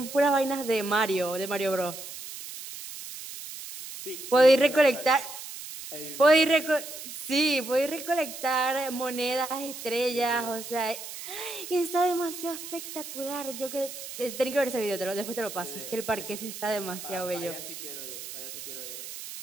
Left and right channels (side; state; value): right; noise; hiss, 10 dB below the sound